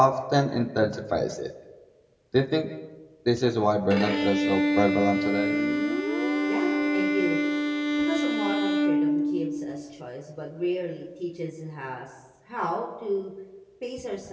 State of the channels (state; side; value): identical; both; correlation 1.00